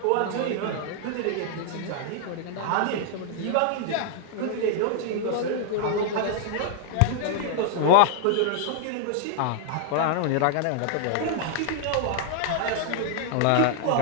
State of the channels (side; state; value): both; different; correlation -0.01